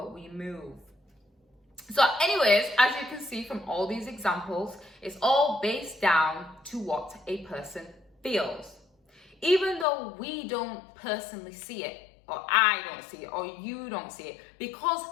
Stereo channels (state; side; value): drops out; right; at 9.9 s